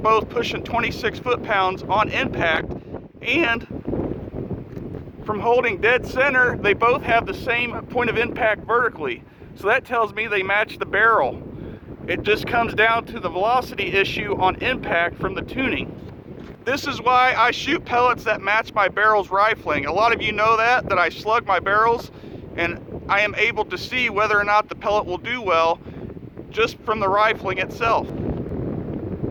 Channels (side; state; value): both; identical; correlation 1.00